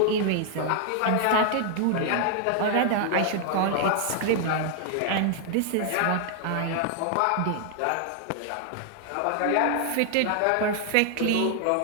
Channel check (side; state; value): both; different; correlation 0.00